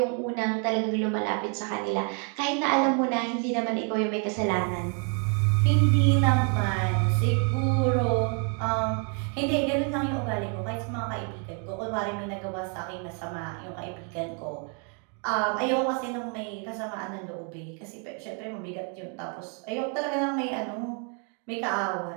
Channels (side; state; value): left; quieter; 39.6 dB